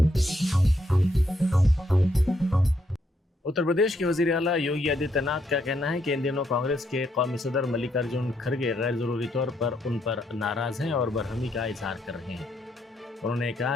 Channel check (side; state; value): both; normal; correlation 0.76